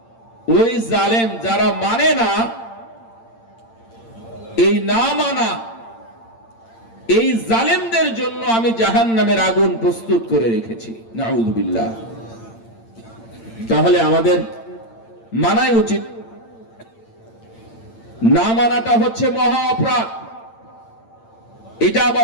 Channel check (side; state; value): right; late; 8.8 ms